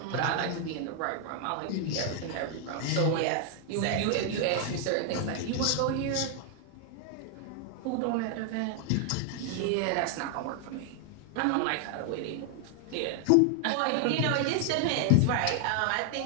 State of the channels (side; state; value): both; different; correlation 0.00